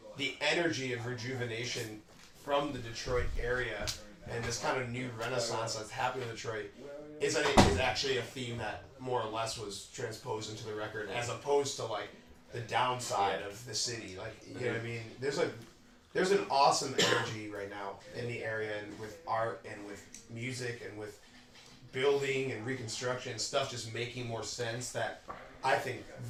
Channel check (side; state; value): both; identical; correlation 1.00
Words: the energy of rejuvenation from the Detroit area and this kind of new renaissance that's happening in Detroit is actually a theme that more or less was transposed into the record, as opposed to, like, the downside of the city. Like, you know what I mean? There's an awesome energy right now in the area, and with art and with music and with building and reconstruction and stuff just making more sense that I think